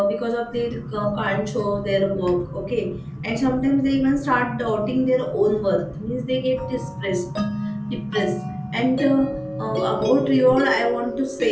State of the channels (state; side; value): identical; both; correlation 1.00